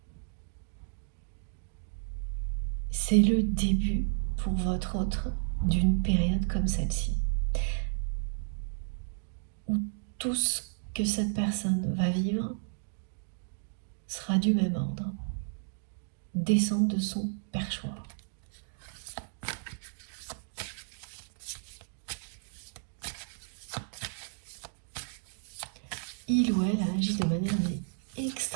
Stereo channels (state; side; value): silent; left; digital silence